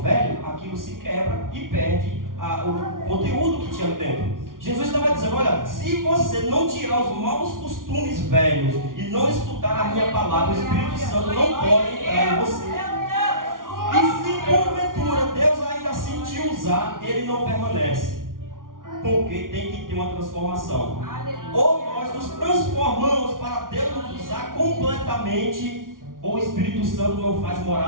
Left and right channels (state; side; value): late; left; 0.89 ms